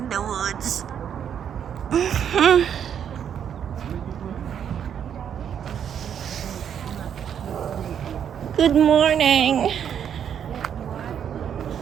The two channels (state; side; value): quieter; left; 8.6 dB